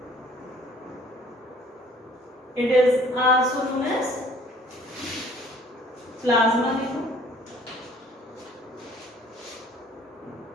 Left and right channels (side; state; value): both; normal; correlation 0.55